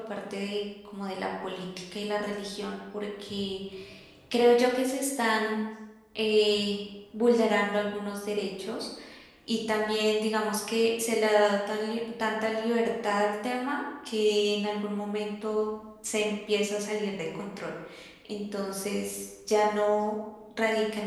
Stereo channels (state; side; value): identical; both; correlation 1.00